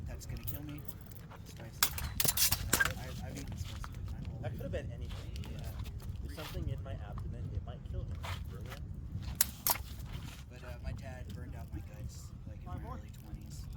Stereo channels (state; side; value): identical; both; correlation 1.00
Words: that's gonna kill me. Spicy. I've eaten spicy my whole That life. could have been anything. Yeah. There's something in my abdomen, it might kill me. Brilliant. But my dad burned out my guts like in my early 20s